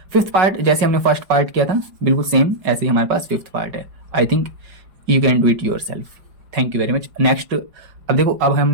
फिफ्थ पार्ट जैसे हमने फर्स्ट पार्ट किया था बिल्कुल सेम ऐसे ही हमारे पास फिफ्थ पार्ट है। I think you can do it your self. Thank you very much. Next अब देखो, अब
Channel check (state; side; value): late; left; 5.3 ms